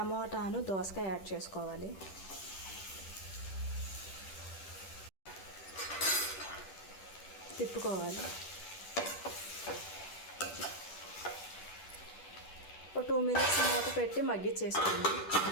దోసకాయ యాడ్ చేసుకోవాలి. తిప్పుకోవాలి. 2 minutes మూత పెట్టి మగ్గించేసుకోండి.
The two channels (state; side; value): late; right; 10 ms